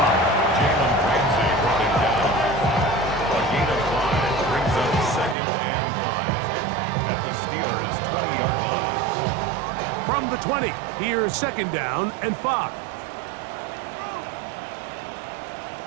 Jalen Ramsey brought him down. A gain of 5 brings up second and 5 at the Steelers' 20-yard line. From the 20, here's second down and 5.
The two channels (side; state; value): left; drops out; at 5.4 s